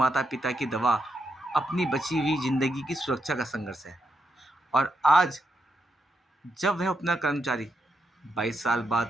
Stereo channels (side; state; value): both; normal; correlation 0.83